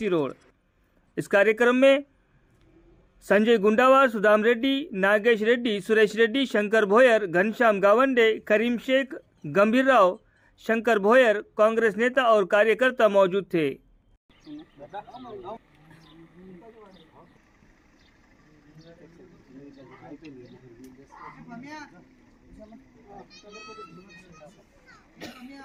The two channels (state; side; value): identical; both; correlation 1.00